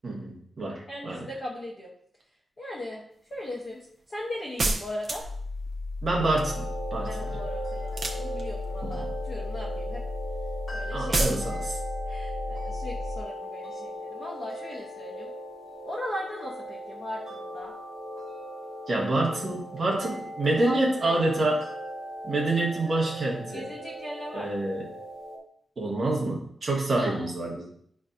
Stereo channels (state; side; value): normal; both; correlation 0.86